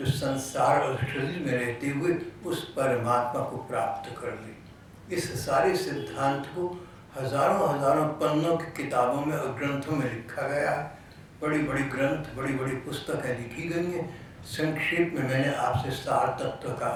संसार और शरीर में रहते हुए उस परमात्मा को प्राप्त कर ले। इस सारे सिद्धांत को हजारों हजारों पन्नों की किताबों में और ग्रंथों में लिखा गया है। बड़ी बड़ी ग्रंथ, बड़ी बड़ी पुस्तकें लिखी गई हैं। संक्षेप में मैंने आपसे सार तत्व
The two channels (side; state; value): both; identical; correlation 1.00